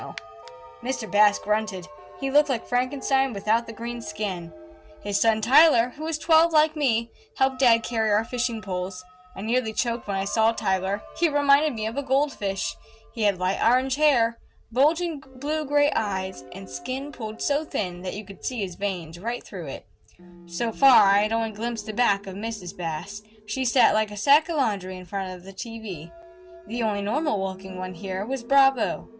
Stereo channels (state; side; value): identical; both; correlation 1.00